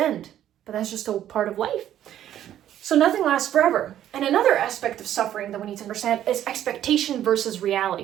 but that's just a part of life. So nothing lasts forever. And another aspect of suffering that we need to understand is expectation versus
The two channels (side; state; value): left; quieter; 11.4 dB